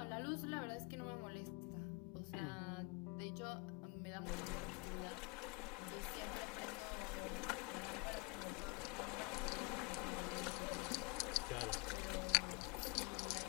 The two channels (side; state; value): right; quieter; 27.6 dB